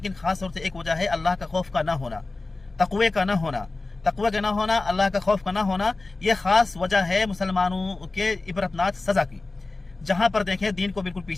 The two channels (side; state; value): right; quieter; 3.4 dB